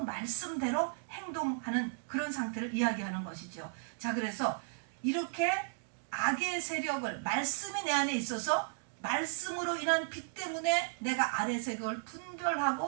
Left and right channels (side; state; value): left; silent; digital silence